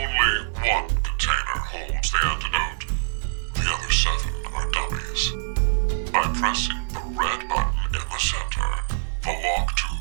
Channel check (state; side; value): silent; left; 62 dB below the other